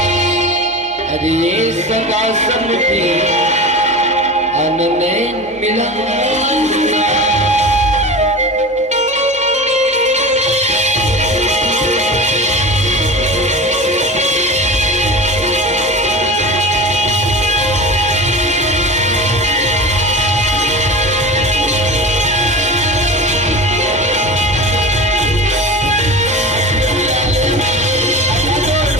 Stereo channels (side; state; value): both; normal; correlation 0.30